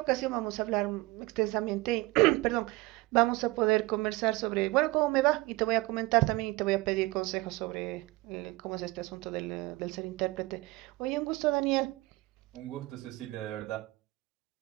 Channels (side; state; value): left; quieter; 21.5 dB